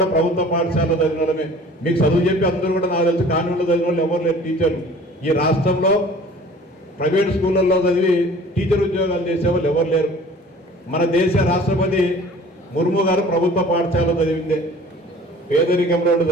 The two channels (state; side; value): normal; both; correlation 0.48